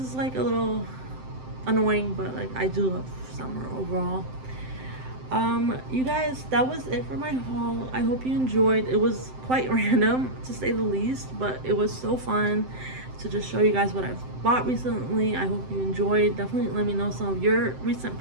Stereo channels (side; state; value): left; late; 7.8 ms